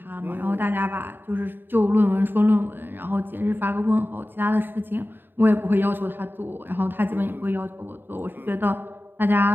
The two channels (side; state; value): left; late; 0.096 ms